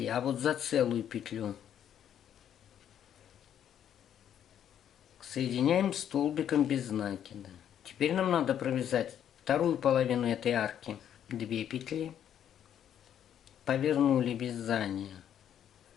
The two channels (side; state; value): right; quieter; 9.8 dB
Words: а вот за целую петлю. Соединяем столбиком без накида. Теперь нам надо провязать вторую половину этой арки. 2 петли. Повернули вязание.